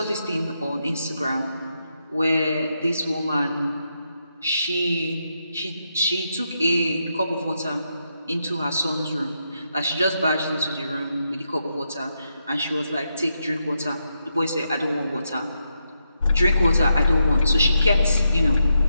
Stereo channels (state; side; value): inverted; both; correlation -0.83